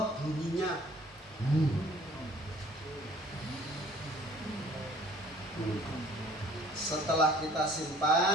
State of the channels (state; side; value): normal; both; correlation 0.54